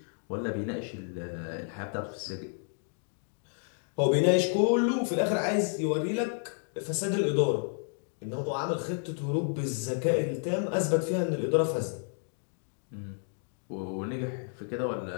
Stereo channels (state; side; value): silent; right; 57 dB below the other